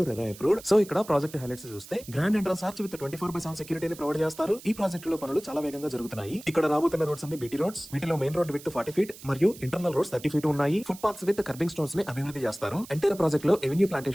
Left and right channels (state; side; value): noise; right; hiss, 18 dB below the sound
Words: రెరా అప్రూవ్డ్. సో ఇక్కడ ప్రాజెక్ట్ హైలైట్స్ చూస్తే గ్రాండ్ ఎంట్రన్స్ ఆర్చ్ విత్ 24/7 సెక్యూరిటీని ప్రొవైడ్ చేస్తారు. ఈ ప్రాజెక్ట్ లో పనులు చాలా వేగంగా జరుగుతున్నాయి. ఇక్కడ రాబోతున్న రోడ్స్ అన్ని బీటీ రోడ్స్. వీటిలో మెయిన్ రోడ్ విత్ 40 feet మరియు ఇంటర్నల్ రోడ్స్ 30 feet ఉన్నాయి. Foot paths with kerbing stones ని అభివృద్ధి చేస్తారు. ఎంటైర్ ప్రాజెక్ట్ లో ఎవెన్యూ